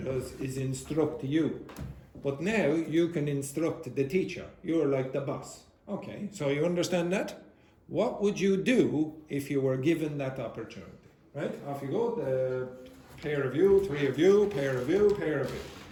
is instruct you, but now you can instruct the teacher. You're like the boss. Okay, so you understand that? What would you do if you were given that opportunity? Right, off you go, the pair of you, three of you, pair of you, pair of you.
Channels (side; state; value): both; identical; correlation 1.00